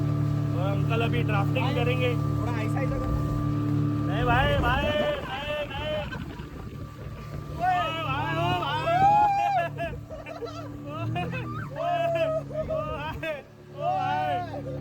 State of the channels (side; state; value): both; identical; correlation 1.00